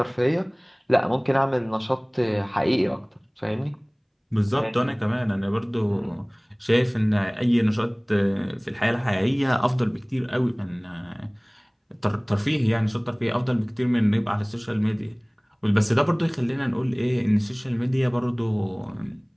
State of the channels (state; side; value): identical; both; correlation 1.00